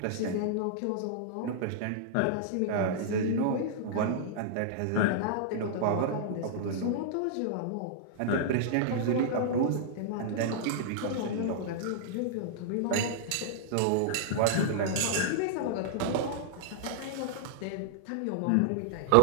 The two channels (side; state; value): both; different; correlation -0.01